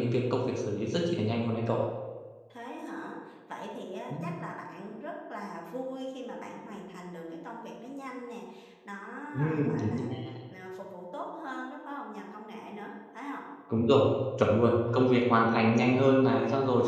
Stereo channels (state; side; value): identical; both; correlation 1.00